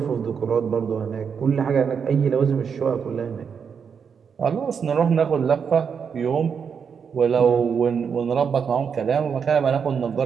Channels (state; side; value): quieter; left; 6.7 dB